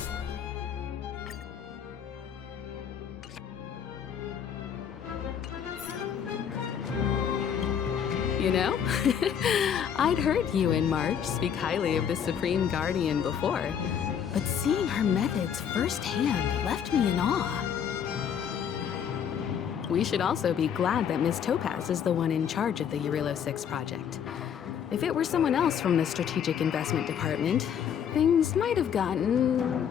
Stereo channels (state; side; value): quieter; right; 8.2 dB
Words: You know, I'd heard you and March speak highly of the Supreme Guardian before, but seeing her methods firsthand left me in awe. We should also be glad that Miss Topaz is the one in charge of the Eurilo 6 project. If it were someone else from the Strategic Investment Department, things might have gotten